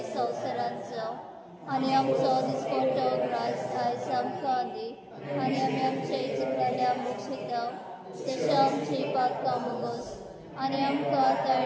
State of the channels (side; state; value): both; identical; correlation 1.00